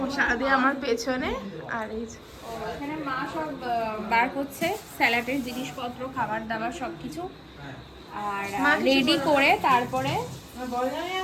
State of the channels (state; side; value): identical; both; correlation 1.00